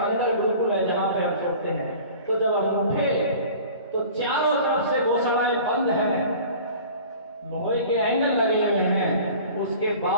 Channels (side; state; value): both; inverted; correlation -0.43